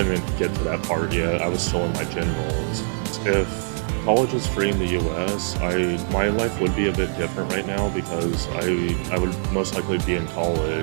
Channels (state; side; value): silent; left; digital silence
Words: get to that part yet. I was still in my generals. If college is free in the U.S., my life would be a bit different right now because I would most likely be in